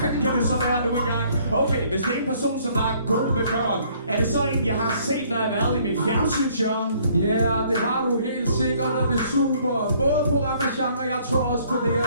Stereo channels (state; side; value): inverted; both; correlation -0.62